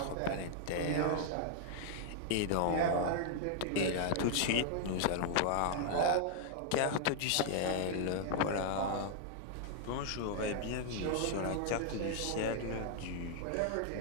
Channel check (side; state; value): both; different; correlation -0.01